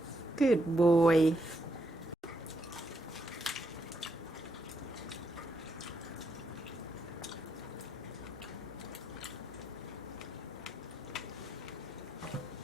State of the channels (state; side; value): normal; both; correlation 0.78